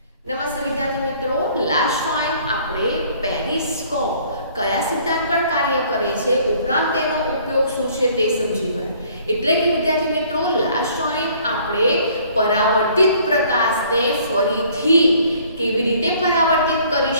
નમસ્તે વિદ્યાર્થી મિત્રો, લાસ્ટ ટાઈમ આપણે પેરિસ્કોપ કયા સિદ્ધાંત પર કાર્ય કરે છે ઉપરાંત તેનો ઉપયોગ શું છે તે સમજી ગયા. એટલે કે વિદ્યાર્થી મિત્રો, લાસ્ટ ટાઈમ આપણે પરાવર્તિત પ્રકાશને ફરીથી કેવી રીતે પરાવર્તિત કરી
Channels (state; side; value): inverted; both; correlation -0.57